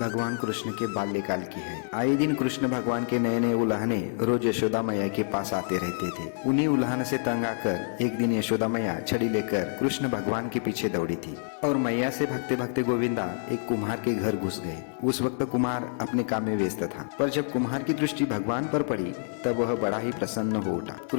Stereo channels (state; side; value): silent; right; 55 dB below the other